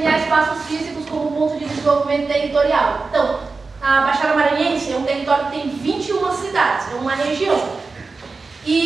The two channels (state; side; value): quieter; left; 4.1 dB